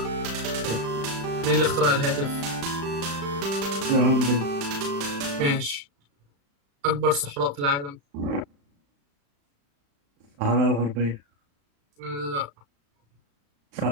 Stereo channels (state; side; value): late; left; 35 ms